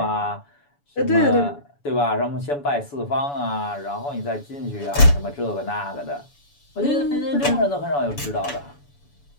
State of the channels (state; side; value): late; right; 7.0 ms